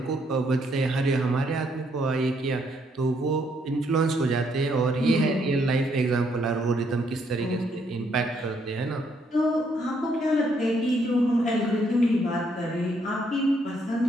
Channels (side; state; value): both; normal; correlation 0.72